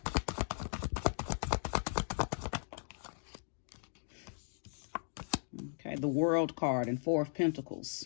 Okay, the World card and 4 of Pentacles.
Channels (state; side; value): silent; right; digital silence